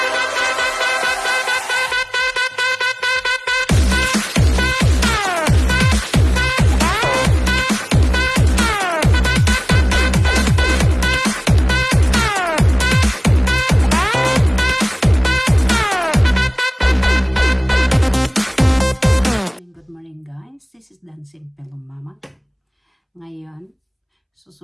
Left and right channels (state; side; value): identical; both; correlation 1.00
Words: This is Dancing Pillow Mama. Ngayon,